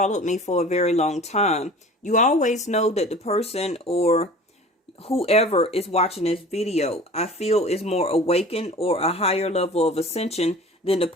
me for a very long time, you always know that the person or whoever is watching this video, I feel is more awakened or a higher level of ascension than the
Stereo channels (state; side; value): normal; both; correlation 0.42